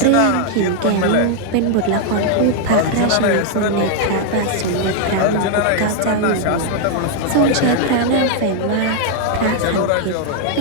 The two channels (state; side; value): different; both; correlation 0.00